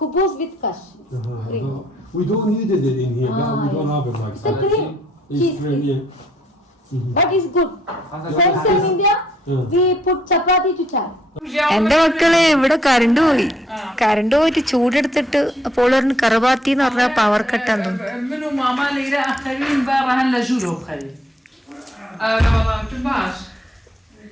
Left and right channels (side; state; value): both; normal; correlation 0.69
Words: with kash cream. We don't need it in here. We don't have it like It's a cream. It's cream, yeah. But it's good. Friends in India, we put chapati to chai. എന്റെ മക്കളെ ഇവിടെ current പോയിട്ട് ചൂടെടുത്തിട്ട് അപ്പോൾ കറബാത്തി എന്ന് പറഞ്ഞ power കട്ടാന്ന്